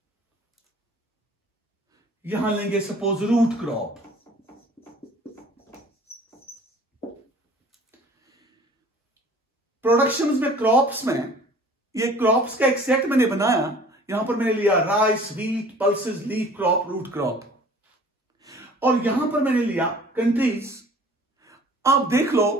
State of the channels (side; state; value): both; normal; correlation 0.49